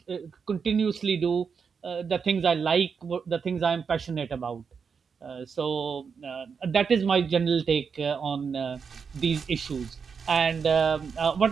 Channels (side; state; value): left; quieter; 6.0 dB